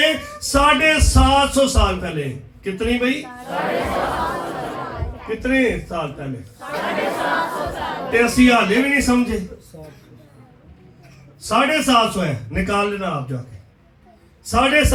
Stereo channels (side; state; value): both; identical; correlation 1.00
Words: 750 साल पहले, कितनी भाई? कितने साल पहले? 83 हाले भी नहीं समझे। 750 है, निकाल लेना आप जाके।